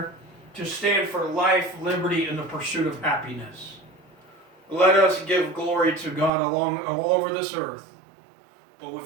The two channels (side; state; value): left; drops out; at 6.3 s